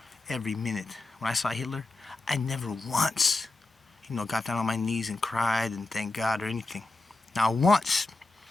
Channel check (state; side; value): quieter; right; 3.2 dB